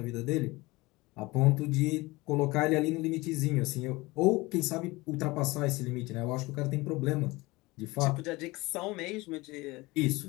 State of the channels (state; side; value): quieter; right; 22.0 dB